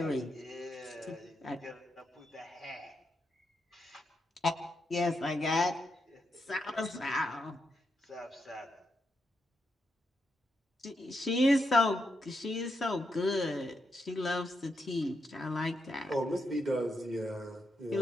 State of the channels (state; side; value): normal; both; correlation 0.83